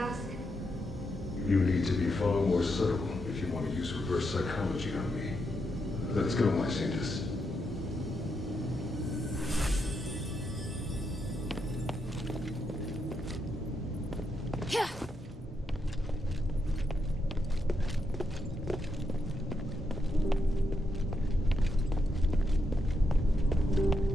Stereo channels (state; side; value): normal; both; correlation 0.82